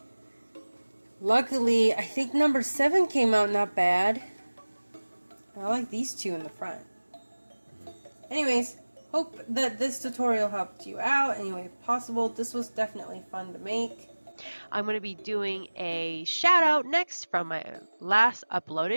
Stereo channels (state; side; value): inverted; both; correlation -1.00